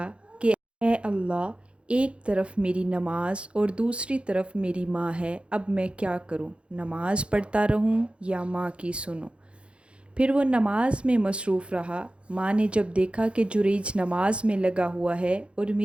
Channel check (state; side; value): late; left; 0.059 ms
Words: کہ اے اللہ، ایک طرف میری نماز اور دوسری طرف میری ماں ہے، اب میں کیا کروں؟ نماز پڑھتا رہوں یا ماں کی سنوں؟ پھر وہ نماز میں مصروف رہا۔ ماں نے جب دیکھا کہ جریج نماز میں لگا ہوا ہے اور